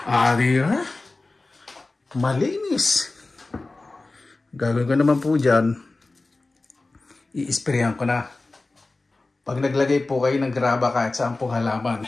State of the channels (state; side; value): quieter; right; 3.3 dB